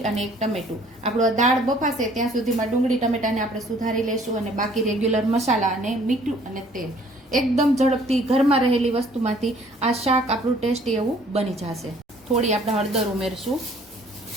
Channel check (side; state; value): both; normal; correlation 0.57